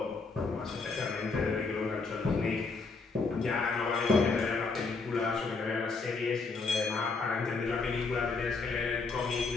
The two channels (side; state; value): right; quieter; 4.2 dB